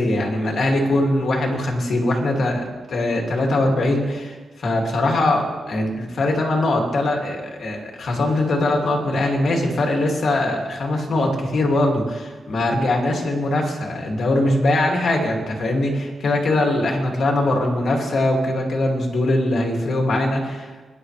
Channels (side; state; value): both; normal; correlation 0.86